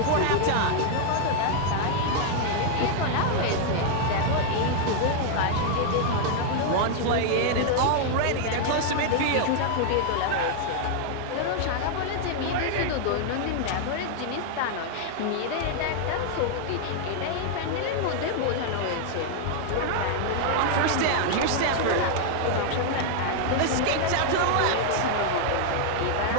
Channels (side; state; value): both; different; correlation 0.00